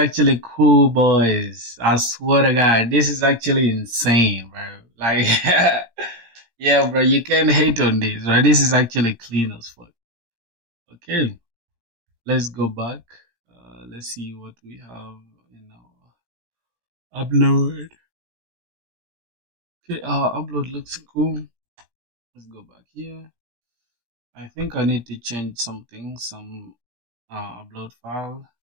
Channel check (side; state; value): left; late; 17 ms